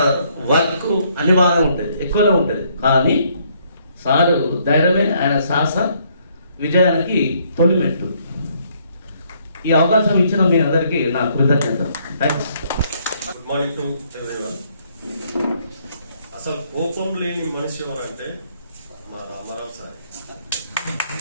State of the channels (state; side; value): inverted; both; correlation -0.68